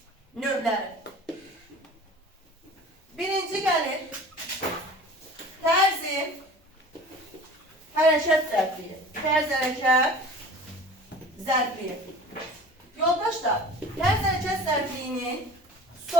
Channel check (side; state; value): both; normal; correlation 0.42